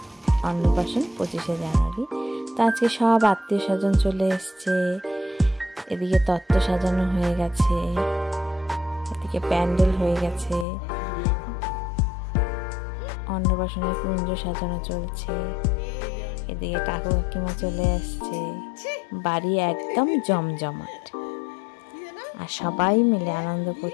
অন্নপ্রাশন 25শে জানুয়ারি। তো আজকে সব আত্মীয় স্বজন চলে এসছে, এদিকে তত্ত্ব সাজানো হয়ে গেছে, এদিকে প্যান্ডেল হয়ে গেছে, অন্নপ্রাশনের কুঞ্জ সাজানো চলছে, এদিকে কাকু কাকিমা চলে আসছে, বাড়ি একদম জমজমাট আর সবাই মিলে আনন্দ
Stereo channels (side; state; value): right; drops out; at 10.7 s